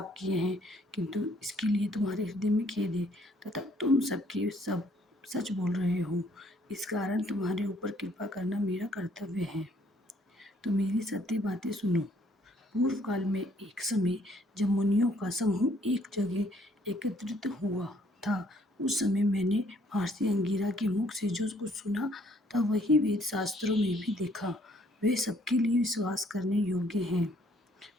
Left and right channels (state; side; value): normal; both; correlation 0.64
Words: किए हैं, किंतु इसके लिए तुम्हारे हृदय में खेद है तथा तुम सबके सब सच बोल रहे हो। इस कारण तुम्हारे ऊपर कृपा करना मेरा कर्तव्य है। तो मेरी सत्य बातें सुनो। पूर्व काल में एक समय जब मुनियों का समूह एक जगह एकत्रित हुआ था, उस समय मैंने महर्षि अंगिरा के मुख से जो कुछ सुना था वही वेद शास्त्रों में भी देखा। वे सबके लिए विश्वास करने योग्य हैं।